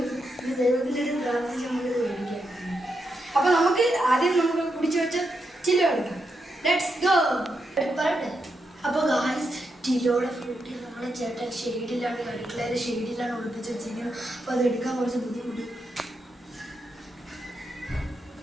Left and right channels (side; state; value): both; normal; correlation 0.84